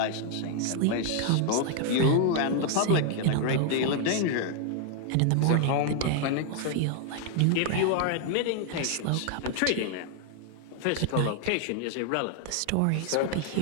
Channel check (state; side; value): different; both; correlation 0.00